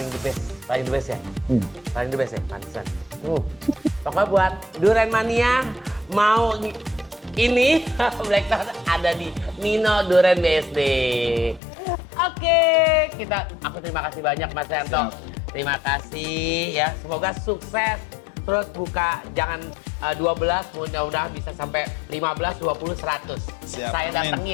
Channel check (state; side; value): drops out; right; at 11.6 s